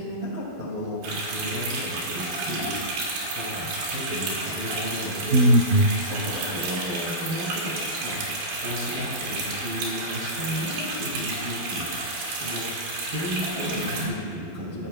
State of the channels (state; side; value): late; left; 12 ms